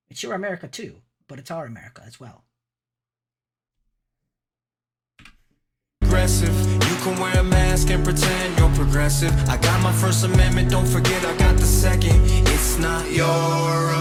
It's your America too, but it's our America as well. You can wear a mask and pretend you're progressive. I got my First Amendment, don't forget I got the second. It's not your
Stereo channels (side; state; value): both; identical; correlation 1.00